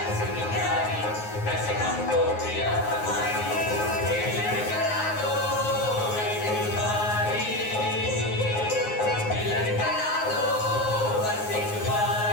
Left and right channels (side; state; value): right; late; 9.5 ms